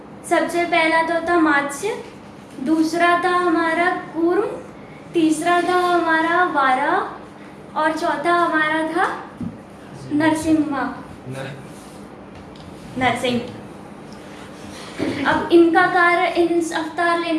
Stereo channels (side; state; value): both; identical; correlation 1.00